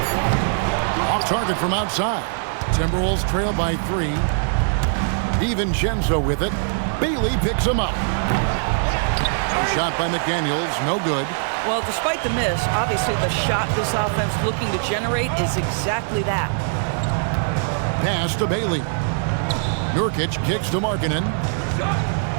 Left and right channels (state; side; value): silent; left; 61 dB below the other